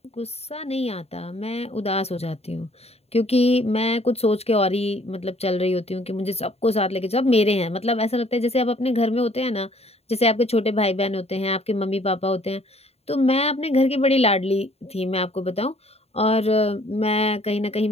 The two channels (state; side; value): late; right; 0.30 ms